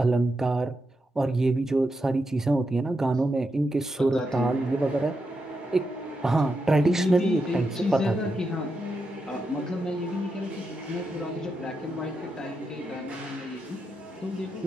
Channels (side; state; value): both; normal; correlation 0.85